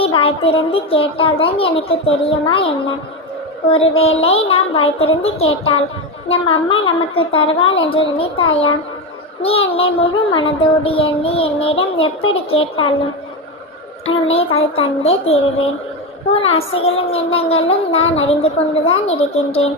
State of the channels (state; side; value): normal; both; correlation 0.15